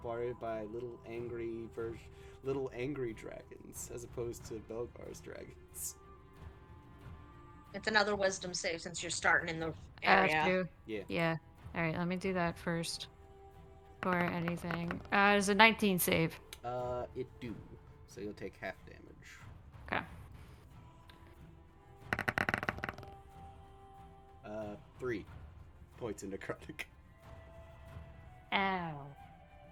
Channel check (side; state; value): both; identical; correlation 1.00